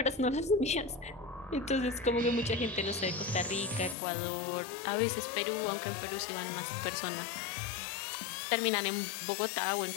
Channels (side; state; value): right; drops out; at 4.0 s